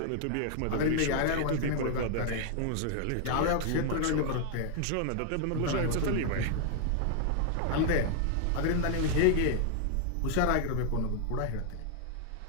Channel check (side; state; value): both; different; correlation 0.00